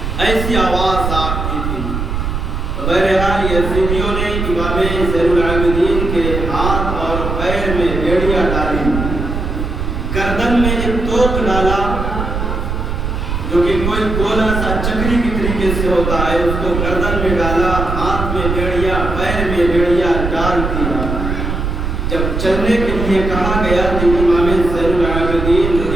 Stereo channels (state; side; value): noise; right; rumble, 3 dB below the sound